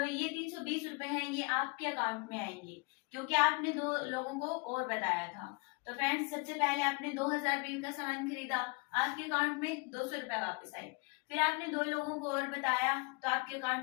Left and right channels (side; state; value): right; quieter; 31.4 dB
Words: ये 320 रुपए हैं ये आपके अकाउंट में आएंगे क्योंकि आपने 2 लोगों को और बताया था। तो फ्रेंड्स, सबसे पहले आपने 2,000 बीवी का सामान खरीदा, आपके अकाउंट में 200 रुपए वापस आए। फिर आपने 2 लोगों को और बताया तो आपके